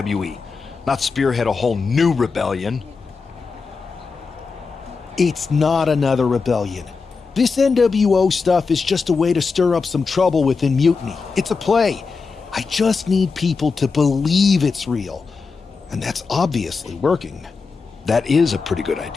not spearhead a whole new rebellion. It's not another rebellion. This NWO stuff is just a way to stir up some trouble within Mutiny. It's a play. I just need people to believe it's real. And that's obviously working. That is a pretty good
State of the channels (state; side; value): quieter; right; 4.7 dB